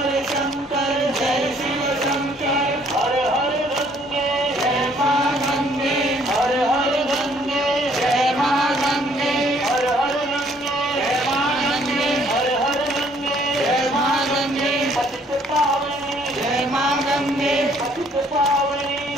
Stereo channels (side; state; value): both; normal; correlation 0.63